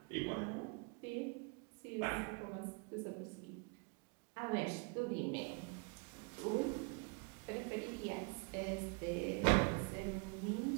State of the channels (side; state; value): left; quieter; 33.1 dB